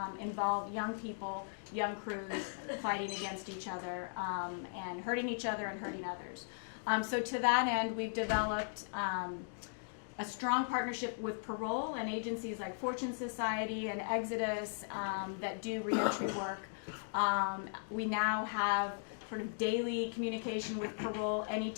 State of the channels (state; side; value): silent; right; digital silence